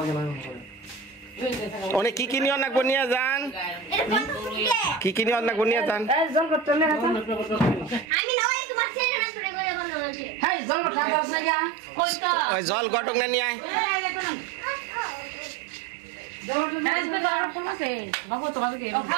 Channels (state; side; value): drops out; left; at 8.1 s